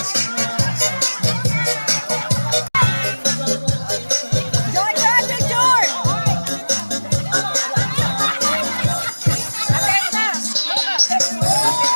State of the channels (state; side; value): inverted; both; correlation -1.00